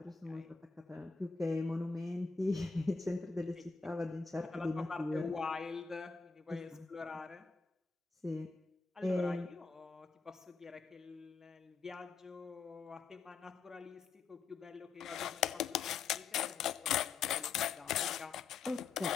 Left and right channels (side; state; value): right; quieter; 4.7 dB